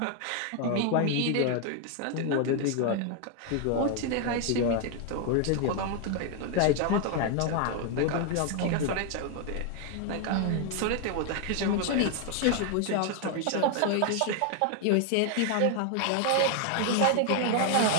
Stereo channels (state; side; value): different; both; correlation 0.00